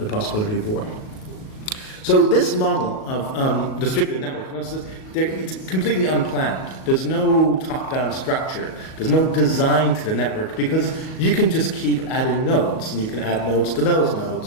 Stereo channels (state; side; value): late; right; 38 ms